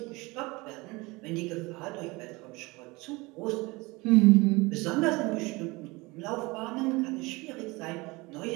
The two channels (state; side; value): quieter; left; 23.9 dB